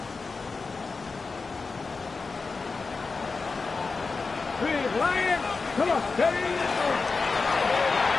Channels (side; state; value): right; quieter; 4.3 dB